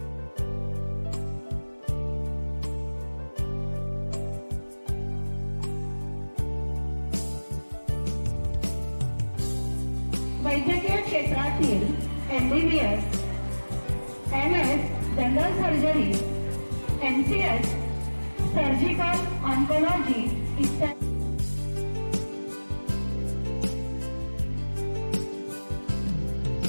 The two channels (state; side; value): inverted; both; correlation -1.00